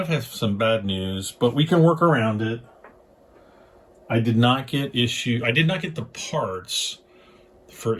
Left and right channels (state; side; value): identical; both; correlation 1.00